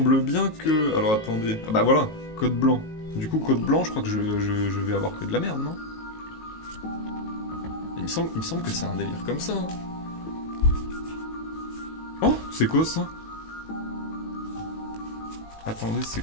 bien que... Alors attendez... Ah bah voilà, code blanc. Du coup, code blanc, je crois que je vais avoir que de la merde, non? Il me semble que c'est un délire comme ça. Hein. Oh, c'est quoi ça? Attendez, c'est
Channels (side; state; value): right; late; 18 ms